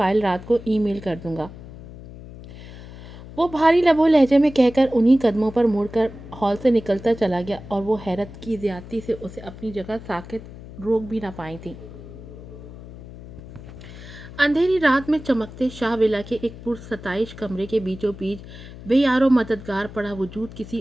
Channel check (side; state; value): left; noise; hum, 15 dB below the sound